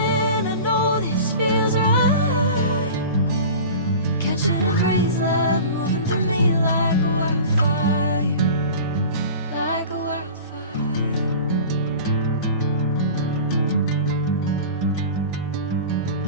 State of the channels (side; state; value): both; inverted; correlation -0.36